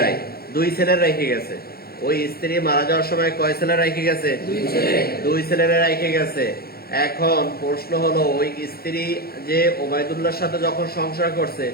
2 ছেলে রেখে গেছে। ওই স্ত্রী মারা যাওয়ার সময় কয় ছেলে রেখে গেছে? 2 ছেলেরা রেখে গেছে। এখন প্রশ্ন হলো, ওই স্ত্রী যে ওবায়দুল্লাহর সাথে যখন সংসার করছে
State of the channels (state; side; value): late; right; 0.45 ms